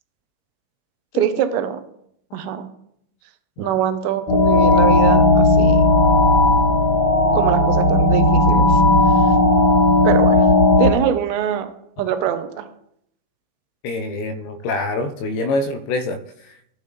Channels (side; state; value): right; late; 22 ms